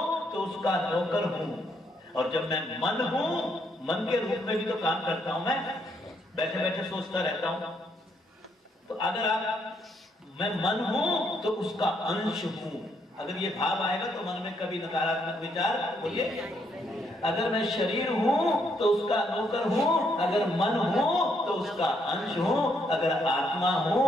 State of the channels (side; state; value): both; normal; correlation 0.74